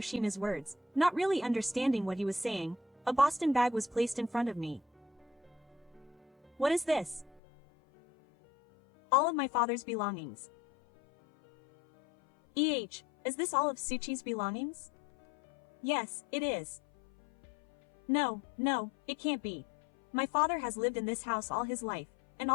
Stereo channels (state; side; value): drops out; right; at 7.4 s